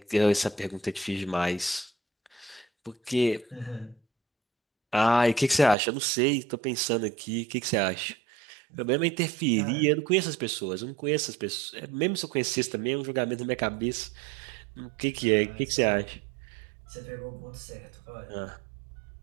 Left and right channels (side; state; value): left; drops out; at 5.8 s